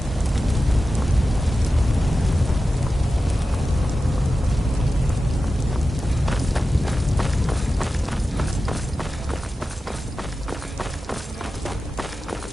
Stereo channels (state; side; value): normal; both; correlation 0.93